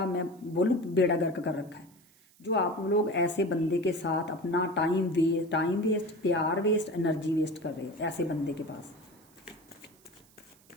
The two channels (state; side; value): noise; right; hiss, 29 dB below the sound